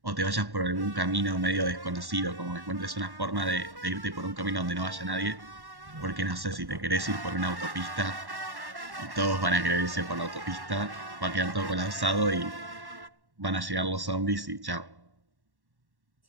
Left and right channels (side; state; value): left; late; 1.1 ms